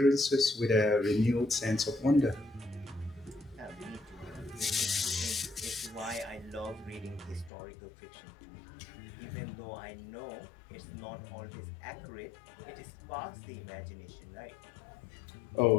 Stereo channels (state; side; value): drops out; right; at 7.5 s